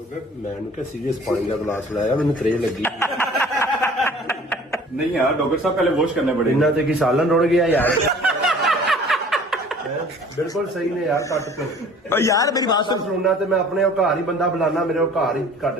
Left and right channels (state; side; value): normal; both; correlation 0.49